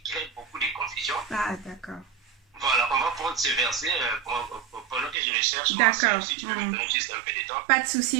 crée beaucoup de confusion. Ah, d'accord. Voilà, on va prendre ce verset pendant que je le cherche. D'accord. Si tu veux me donner juste un peu de temps. Pas de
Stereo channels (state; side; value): drops out; left; at 5.2 s